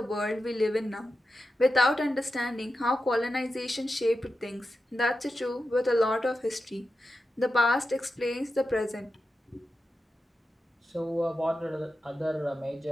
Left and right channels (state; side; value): normal; both; correlation 0.91